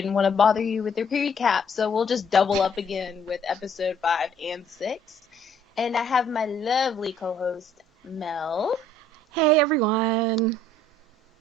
want to bother you with the recap, so we'll just double up again with episode 5 and 6. And I have my lovely co-host, Mel. Hey, everyone.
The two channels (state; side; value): normal; both; correlation 0.62